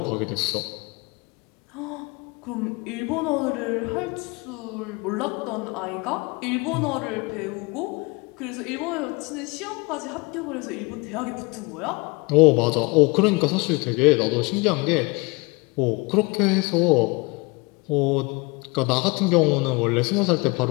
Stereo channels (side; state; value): right; quieter; 27.0 dB